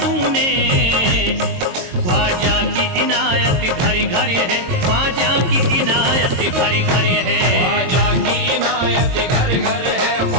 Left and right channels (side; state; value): left; late; 22 ms